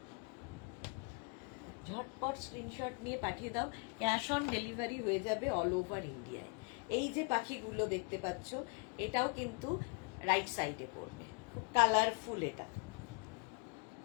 ঝটপট স্ক্রিনশট নিয়ে পাঠিয়ে দাও, ক্যাশ অন ডেলিভারি হয়ে যাবে অল ওভার ইন্ডিয়ায়। এই যে পাখিগুলো দেখতে পাচ্ছ এটাও কিন্তু রাইট সাইডে পড়বে, খুব কালারফুল, এটা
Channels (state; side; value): quieter; right; 35.5 dB